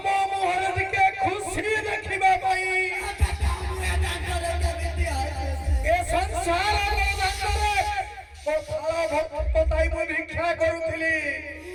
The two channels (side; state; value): both; identical; correlation 1.00